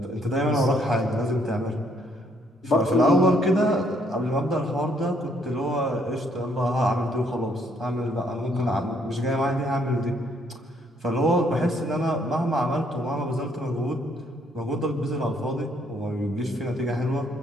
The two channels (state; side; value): normal; both; correlation 0.68